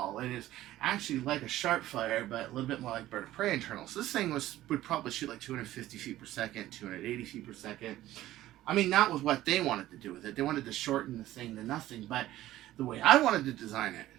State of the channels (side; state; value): left; quieter; 14.8 dB